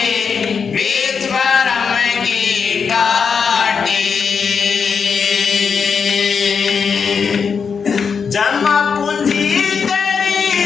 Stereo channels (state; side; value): quieter; right; 6.0 dB